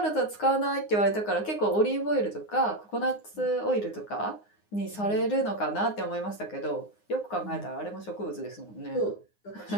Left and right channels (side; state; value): right; late; 9.6 ms